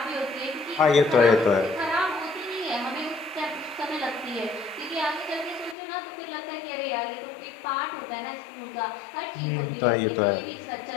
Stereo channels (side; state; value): right; drops out; at 5.8 s